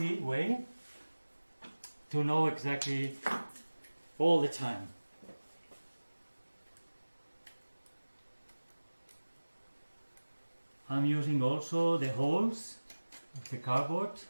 way to know exactly all the time. I'm using also the holes of the cardboard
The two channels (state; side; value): inverted; both; correlation -1.00